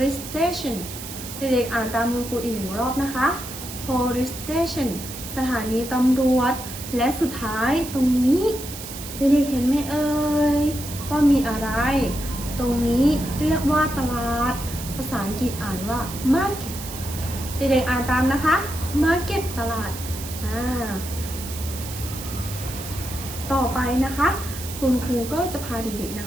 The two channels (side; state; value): right; noise; hiss, 10 dB below the sound